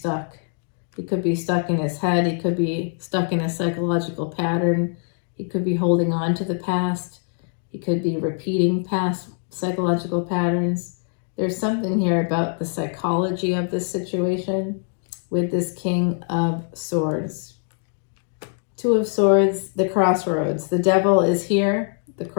He could be stuck in his head. He could be stuck in a psychological pattern. He could be holding on to the past. He could be repeating past psychological patterns. There's something here about the psychology of this situation with this King of Swords. Two of Swords, the Crossroads. The devil is here. The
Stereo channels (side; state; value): right; silent; 58 dB below the other